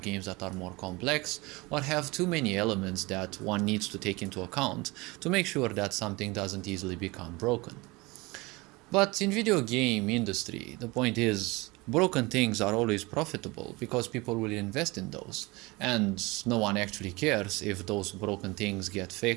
that are more complex or have too many elements that one needs to take into account to make sure that something doesn't easily become broken. But in video game industry, the point is broken things are always profitable because people will invest in those, and no one actually cares if those broken things get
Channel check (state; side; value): quieter; left; 23.6 dB